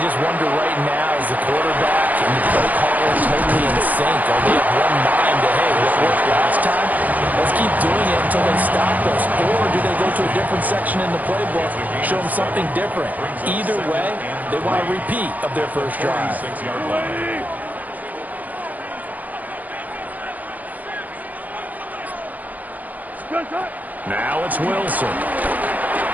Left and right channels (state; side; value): late; left; 0.079 ms